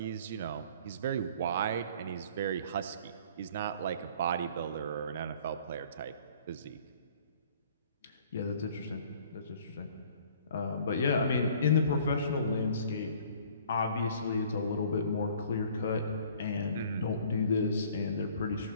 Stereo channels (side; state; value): both; inverted; correlation -0.53